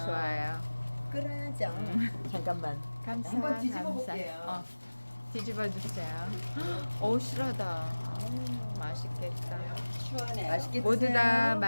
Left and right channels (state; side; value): inverted; both; correlation -1.00